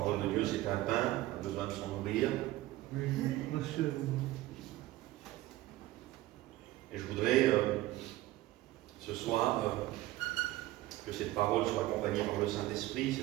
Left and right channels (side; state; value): left; quieter; 16.6 dB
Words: de Dieu, c'est un pain, on a besoin de s'en nourrir. Et je voudrais ce soir que cette parole soit accompagnée par le Saint-Esprit, c'est